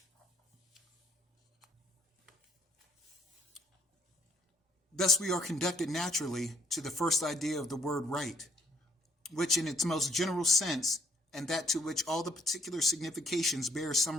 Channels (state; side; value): normal; both; correlation 0.68